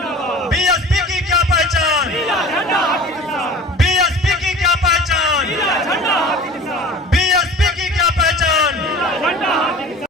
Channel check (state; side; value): normal; both; correlation 0.40